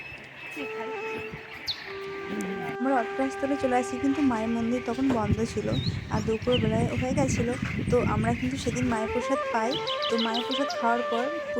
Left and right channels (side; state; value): both; identical; correlation 1.00